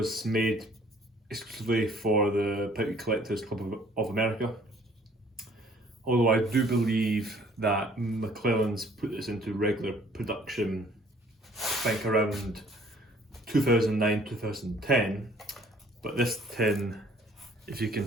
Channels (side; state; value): both; normal; correlation 0.57